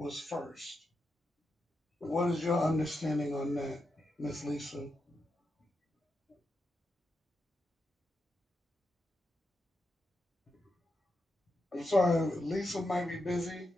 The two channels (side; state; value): both; normal; correlation 0.86